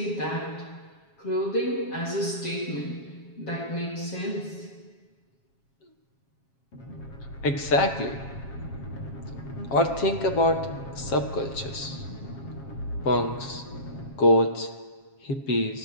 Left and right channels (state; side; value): late; right; 7.4 ms